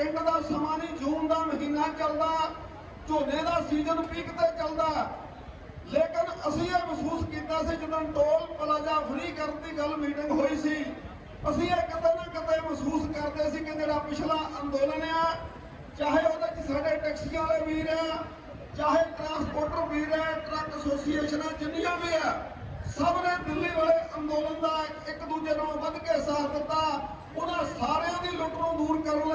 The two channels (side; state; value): both; identical; correlation 1.00